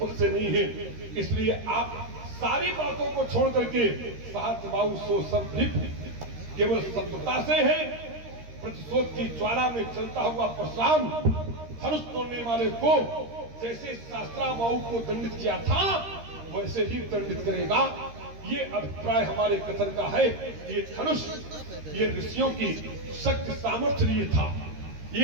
से नहीं है। इसलिए आप सारी बातों को छोड़ करके सहस्त्रबाहु सो संलिप्त केवल संतता से है। प्रतिशोध की ज्वाला में चलता हुआ परशुराम धनुष तोड़ने वाले को जैसे शास्त्राबाहु को दंडित किया था वैसे ही दंडित करेगा। ये अभिप्राय हमारे कथन का है। ये धनुष ये ऋषियों की शक्ति सामर्थ्य लिए था।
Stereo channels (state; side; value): late; left; 13 ms